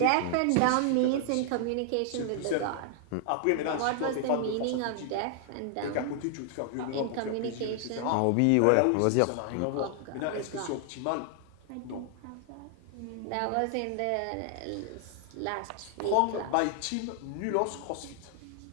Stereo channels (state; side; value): different; both; correlation 0.00